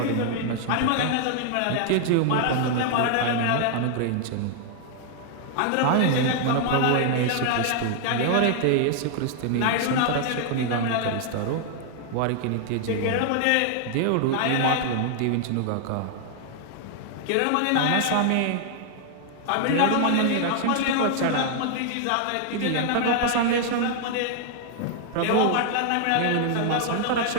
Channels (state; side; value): different; both; correlation 0.00